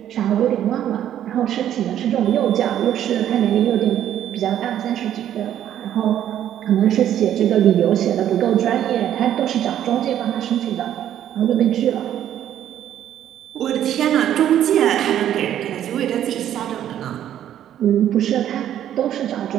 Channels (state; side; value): quieter; left; 11.0 dB